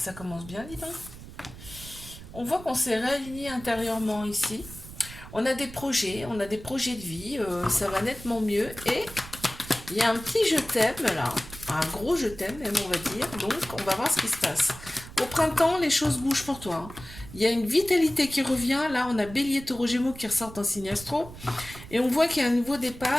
commence bien, dis donc. On voit qu'on s'est réaligné intérieurement ici. On a des projets de vie. Ça va nettement mieux. Et il y a un petit je t'aime là, un gros je t'aime même on va dire, donc on va voir ce qui se passe. Au printemps, les choses bougent pour toi. Il y a une vitalité qui revient, là on a Bélier, Taureau, Gémeaux qui ressortent en signe astro, et on voit qu'il y a un nouveau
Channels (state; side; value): noise; right; rumble, 15 dB below the sound